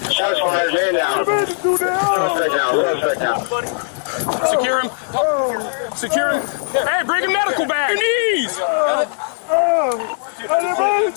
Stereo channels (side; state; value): right; silent; digital silence